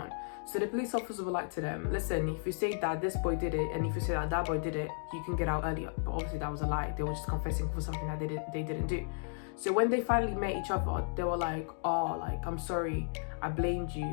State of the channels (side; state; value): right; silent; digital silence